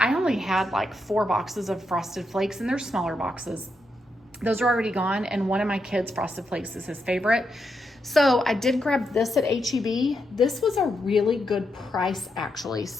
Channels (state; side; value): normal; both; correlation 0.83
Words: only had like 4 boxes of Frosted Flakes, and they're smaller boxes. Those are already gone, and one of my kids' Frosted Flakes is his favorite. So I did grab this at H-E-B. This was a really good price, actually.